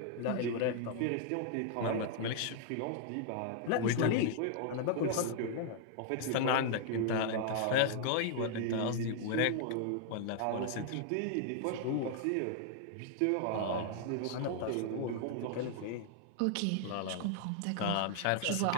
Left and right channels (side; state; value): both; different; correlation 0.00